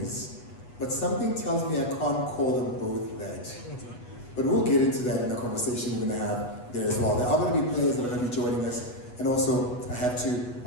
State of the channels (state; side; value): late; right; 8.2 ms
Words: but something tells me I can't call them both that. But we'll get into that in the conversation we're going to have there as well. There are going to be players that are going to be joining us. And also, I have to